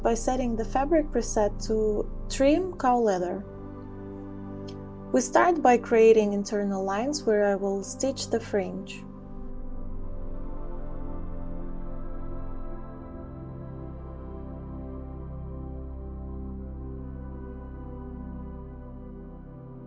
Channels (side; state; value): both; identical; correlation 1.00